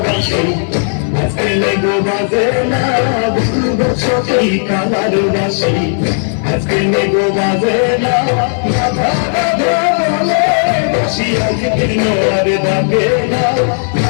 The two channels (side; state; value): right; silent; digital silence